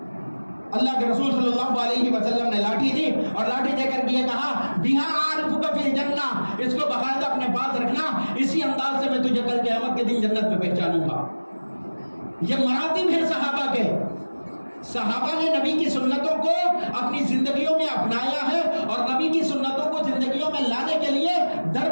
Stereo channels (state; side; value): inverted; both; correlation -1.00